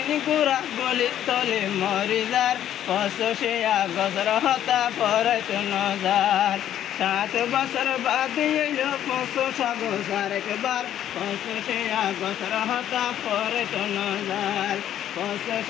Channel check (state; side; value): quieter; right; 11.0 dB